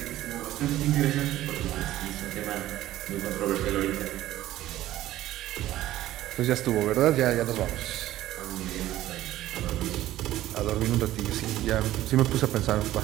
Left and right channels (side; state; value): left; quieter; 14.4 dB